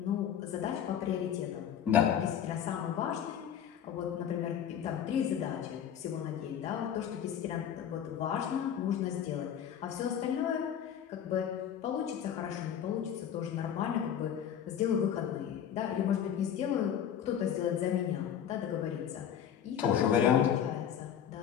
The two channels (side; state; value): right; quieter; 9.1 dB